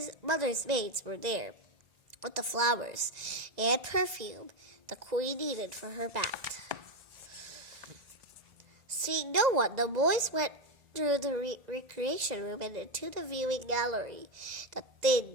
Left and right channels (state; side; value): late; left; 1.9 ms